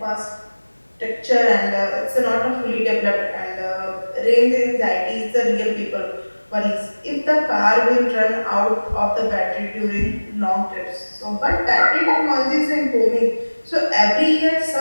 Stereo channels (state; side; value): inverted; both; correlation -1.00